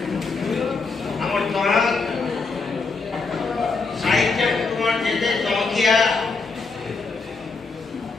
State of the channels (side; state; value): right; quieter; 4.2 dB